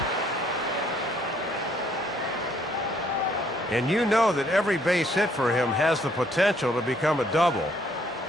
And you know that every base hit for him has the potential to become a double.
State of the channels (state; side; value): normal; both; correlation 0.66